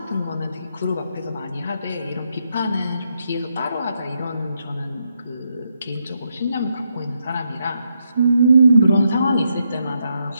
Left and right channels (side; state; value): both; inverted; correlation -0.80